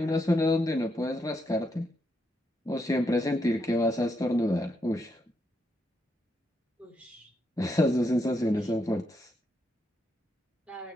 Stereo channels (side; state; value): both; normal; correlation 0.80